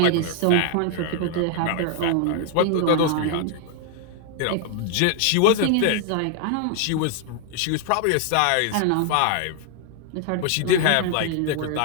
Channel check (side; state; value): both; different; correlation 0.00